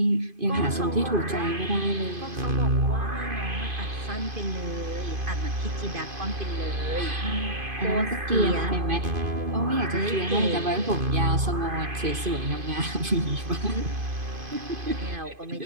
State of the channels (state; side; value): late; left; 2.5 ms